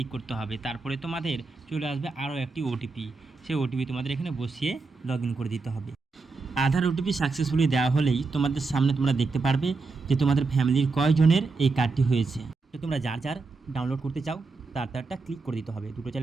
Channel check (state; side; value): quieter; left; 4.0 dB